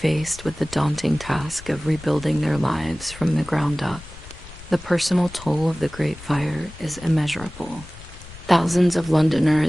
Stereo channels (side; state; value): left; noise; rumble, 17 dB below the sound